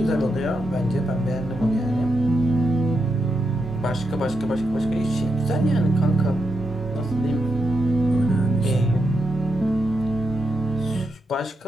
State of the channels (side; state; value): both; normal; correlation 0.84